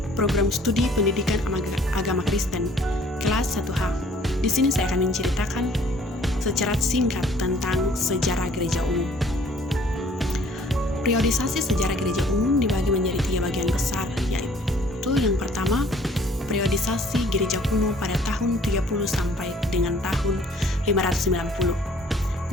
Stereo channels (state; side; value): normal; both; correlation 0.57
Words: program studi pendidikan agama Kristen, kelas 1H. Di sini saya akan menceritakan secara singkat tentang sejarah gereja umum. Periodisasi sejarah gereja umum dibagi menjadi 3 bagian besar, yaitu yang pertama, periodisasi gereja kuno pada tahun 30 sampai dengan tahun 590.